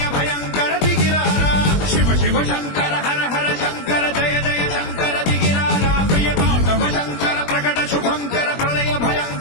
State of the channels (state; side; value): late; right; 21 ms